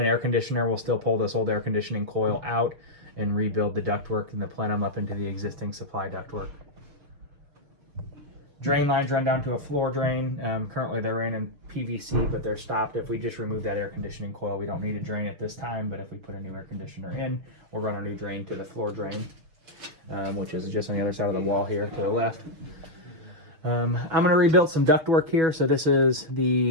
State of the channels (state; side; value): late; left; 6.6 ms